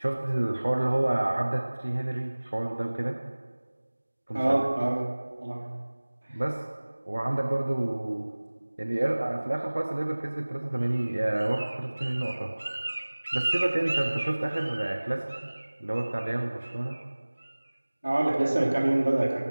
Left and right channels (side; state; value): both; inverted; correlation -1.00